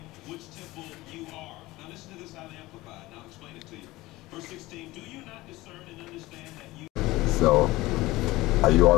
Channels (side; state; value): right; quieter; 19.1 dB